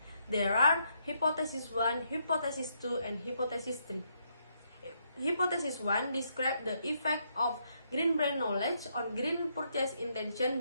There are hypothesis 1, hypothesis 2, and hypothesis 3. Hypothesis 1 describes the effect of green brand knowledge on green purchase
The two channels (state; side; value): inverted; both; correlation -0.76